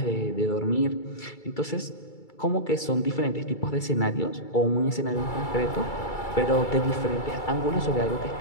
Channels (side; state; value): right; late; 2.3 ms